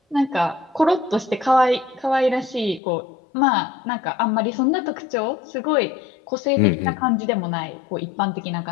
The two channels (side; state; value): right; drops out; at 2.8 s